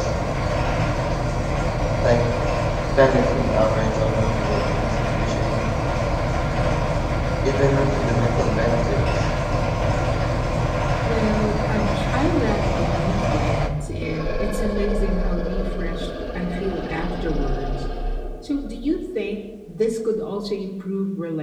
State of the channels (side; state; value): both; identical; correlation 1.00